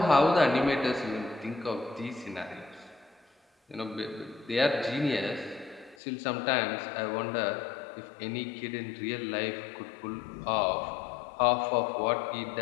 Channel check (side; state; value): right; drops out; at 6.0 s